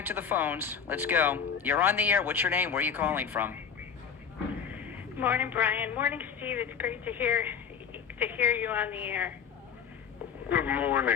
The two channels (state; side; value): quieter; right; 7.2 dB